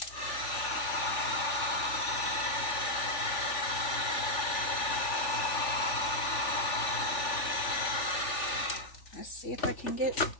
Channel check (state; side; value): late; right; 3.4 ms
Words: let's see if I can get